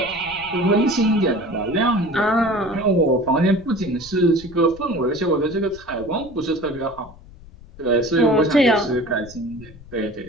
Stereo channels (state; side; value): noise; left; rumble, 20 dB below the sound